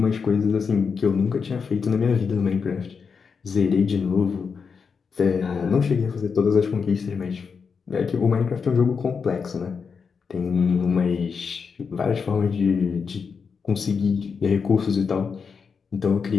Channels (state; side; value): quieter; right; 5.7 dB